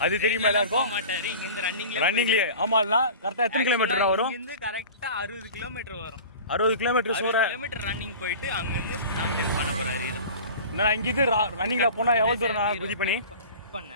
அது தெரியுமா எல்லாருக்கும்? மாட்டாரு. இங்க இருந்து ரன்னிங்லயே. ஆமாண்ணா, கரெக்டா எத்தனை கிலோமீட்டர் வரும்? இங்க கரெக்டா 60 கிலோமீட்டர் வரும். 60 கிலோமீட்டர் ரன்னிங் போயிட்டு அங்க இருந்து லாங் ஜம்ப் பண்ண போறாரு. நான் இங்கிருந்து ரன்னிங்ல போனா எவ்வளவு தூரம் நான் குதி பண்ணி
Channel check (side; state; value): both; inverted; correlation -0.38